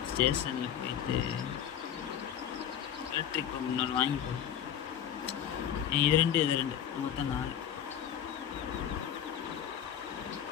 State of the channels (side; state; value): right; quieter; 9.6 dB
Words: ஸ்டேஷனில் போயிட்டு எலக்ட்ரிக் பம்ப் இன்னொரு வாங்கி போடும். இது ரெண்டு மொத்தம் 4.